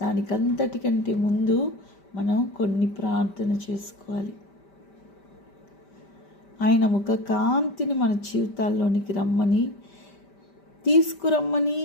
దానికంతటికంటే ముందు మనం కొన్ని ప్రార్థన చేసుకోవాలి. ఆయన ముఖ కాంతిని మన జీవితాల్లోనికి రమ్మని, తీసుకురమ్మని,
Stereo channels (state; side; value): late; right; 5.1 ms